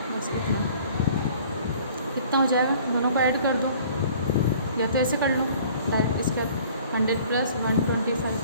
बस कितना हो जाएगा, दोनों को ऐड कर दो, या तो ऐसे कर लो डायरेक्ट, इसके 100 प्लस 125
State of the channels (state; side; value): inverted; both; correlation -0.52